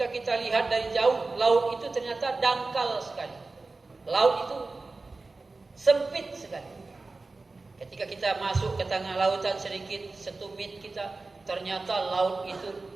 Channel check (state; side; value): quieter; left; 3.5 dB